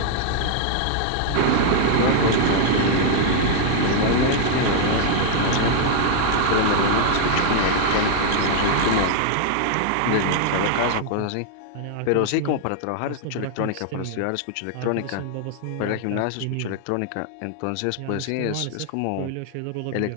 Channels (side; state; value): both; different; correlation 0.00